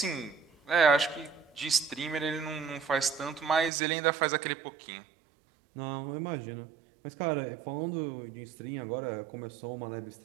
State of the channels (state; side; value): drops out; left; at 3.7 s